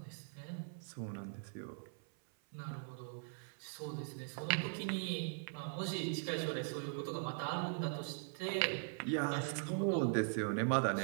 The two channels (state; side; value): silent; left; 50 dB below the other